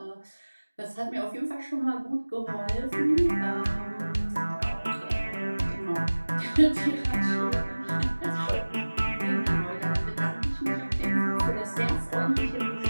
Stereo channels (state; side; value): inverted; both; correlation -1.00